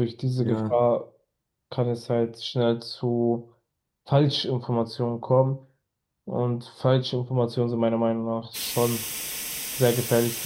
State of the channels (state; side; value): identical; both; correlation 1.00